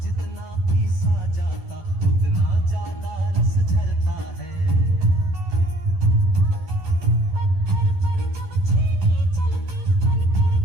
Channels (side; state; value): left; late; 11 ms